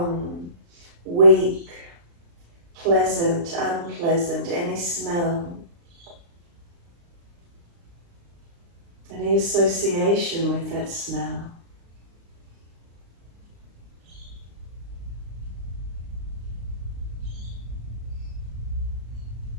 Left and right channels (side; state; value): left; late; 35 ms